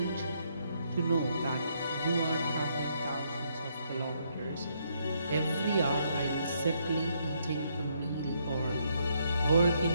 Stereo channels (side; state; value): both; inverted; correlation -0.73